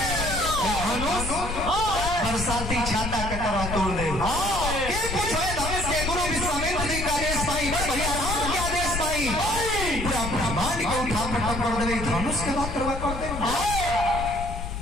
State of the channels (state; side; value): noise; left; rumble, 5 dB below the sound